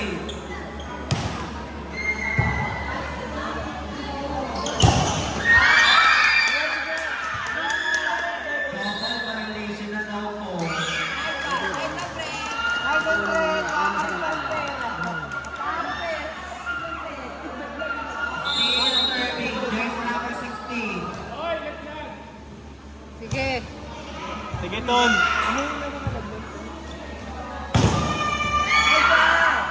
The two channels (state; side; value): identical; both; correlation 1.00